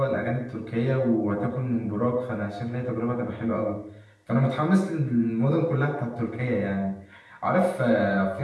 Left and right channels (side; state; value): both; identical; correlation 1.00